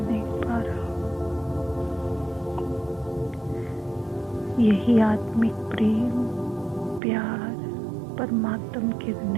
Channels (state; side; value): drops out; left; at 7.0 s